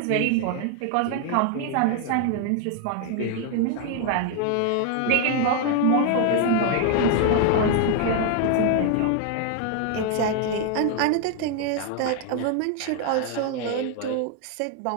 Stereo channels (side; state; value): both; different; correlation 0.00